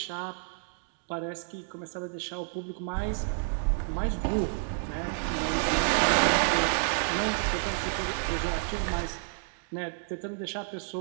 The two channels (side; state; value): left; silent; 58 dB below the other